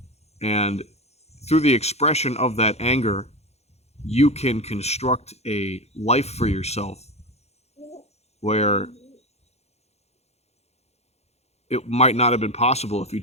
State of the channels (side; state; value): right; late; 0.31 ms